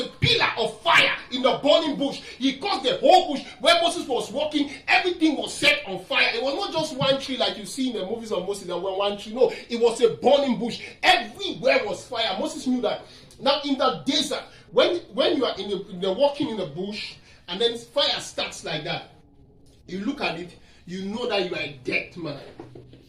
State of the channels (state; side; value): identical; both; correlation 1.00